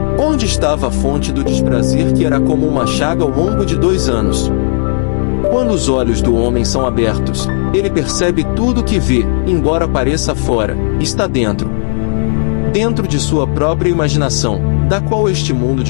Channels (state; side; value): silent; right; digital silence